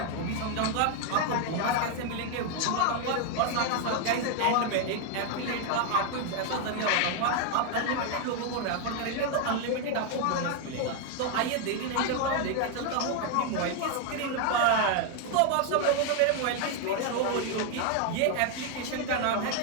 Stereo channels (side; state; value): both; different; correlation 0.01